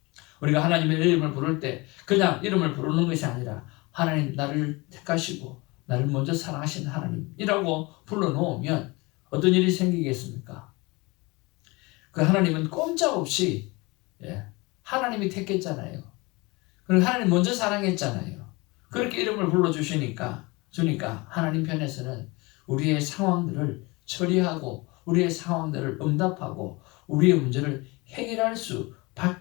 우리가 하나님의 이름을 부를 때 그냥 이름을 부르는 것이 아니라 하나님 나를 택하시고 나를 먼저 사랑하신 하나님이라고 불러놓으면 어떤 일이 생기겠습니까? 그 하나님은 꼼짝없이 하나님이 택했잖아요. 그리고 하나님 먼저 사랑했잖아요. 그렇게 이름을 불러주시니까 하나님 편에서는 우리의 상황들을 처리하고 우리의 상황들을 응답하고 우리의 문제를 해결할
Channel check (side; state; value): right; quieter; 24.8 dB